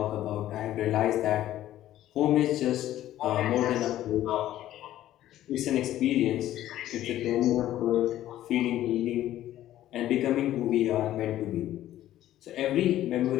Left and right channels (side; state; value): right; quieter; 13.3 dB